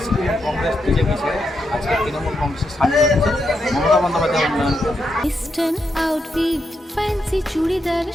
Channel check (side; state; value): both; normal; correlation 0.83